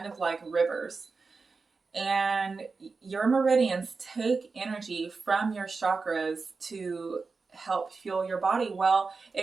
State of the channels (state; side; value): quieter; left; 4.4 dB